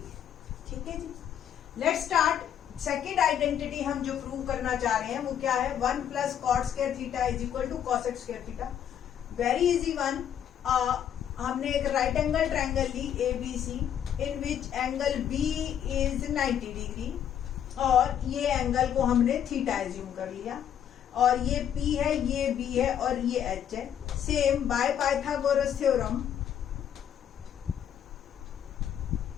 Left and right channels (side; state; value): right; quieter; 9.5 dB